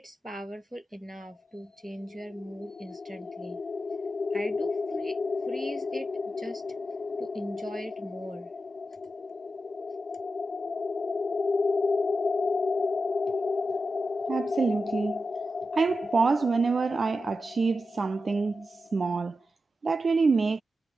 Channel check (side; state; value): both; normal; correlation 0.90